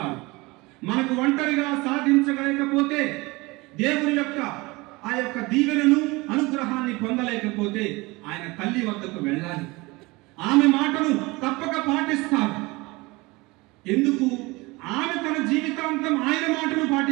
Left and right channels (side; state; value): left; quieter; 23.4 dB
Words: మనకు ఒంటరిగా సాధించలేకపోతే, దేవుని యొక్క ఆ యొక్క దీవెనను, అనుగ్రహాన్ని పొందలేకపోతే ఆయన తల్లి వద్దకు వెళ్ళాలి. ఆమె మాటను తప్పక పాటిస్తారు. ఎందుకు? ఆమె తన జీవితాంతం ఆయన మాటను